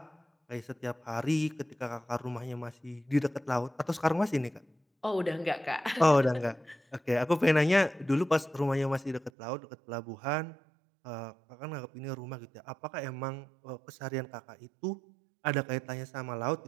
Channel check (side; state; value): left; drops out; at 9.3 s